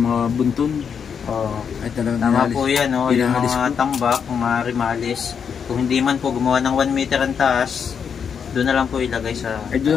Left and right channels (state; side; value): quieter; right; 7.0 dB